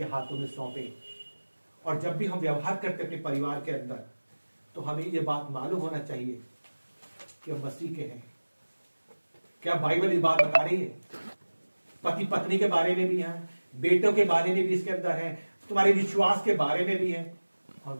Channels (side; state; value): both; inverted; correlation -1.00